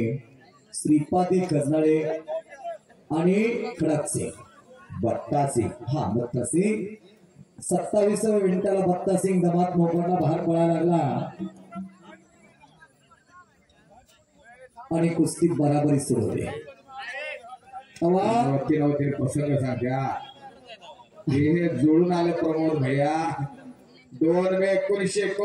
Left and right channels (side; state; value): both; identical; correlation 1.00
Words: श्रीपादी गजनाळे आणि खडक सिंग बट्टा सिंग. हा बट्टा सिंग 27व्या मिनिटाला बट्टा सिंग दमात मोकडला बाहेर पळायला लागला आणि कुस्ती बराबरी सुरू होते. नव्हते प्रसंग सांगा. हे जोडून आले प्रमोद भैया. 2 मे